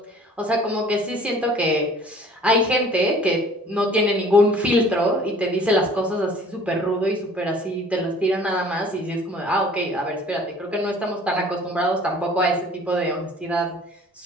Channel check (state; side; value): normal; both; correlation 0.51